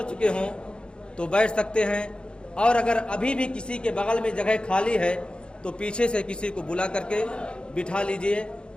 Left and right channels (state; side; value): late; right; 0.053 ms